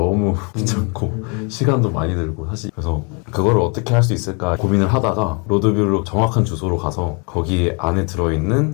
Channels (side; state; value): right; quieter; 33.8 dB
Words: 귀찮고 시간도 많이 들고 사실 그래서 그거를 어떻게 할 수 있을까 고민을 하다가 로드뷰로 정확한 주소로 가서 거기 안에